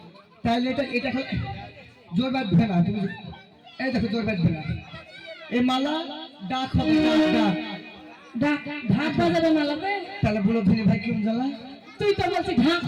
তাহলে এটা এটা জোর বাঁধবে না তুমি এই দেখো জোর বাঁধবে না এই মালা ডাক হবে ডাক ডাক ঢাক বাজাবে মালাতে তাহলে বলো ধনী ভাই কেমন জ্বালা তুই তো বলছিস ঢাক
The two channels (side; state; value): both; identical; correlation 1.00